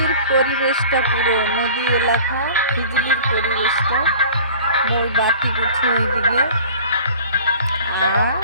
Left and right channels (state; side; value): inverted; both; correlation -0.45